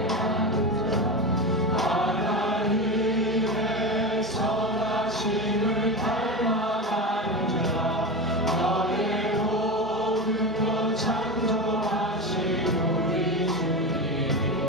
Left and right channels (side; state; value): both; normal; correlation 0.21